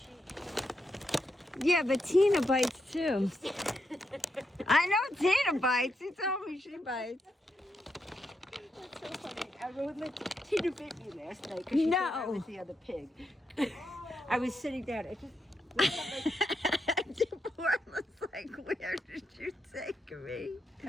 Yeah, but Tina bites too. I know Tina bites. She told me she bites. That's so funny. I remember Tina bit me last night because she thought I No. was the other pig. I was sitting down. I just Deborah was like, where did you take me?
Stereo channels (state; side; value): normal; both; correlation 0.82